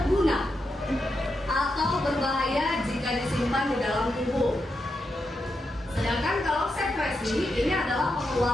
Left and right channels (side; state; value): both; normal; correlation 0.85